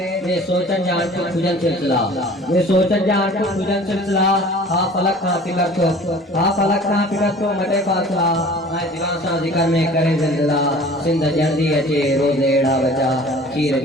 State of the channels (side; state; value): both; normal; correlation 0.46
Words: ये सोचन जान को खुजन सिलसिला ये सोचन जान को खुजन सिलसिला हा फलक का फिकर तो मटे पासला मैं जीवन सा जिक्र में करे जिंदला सिंध जल्दी अचे रोज एड़ा बचा खीर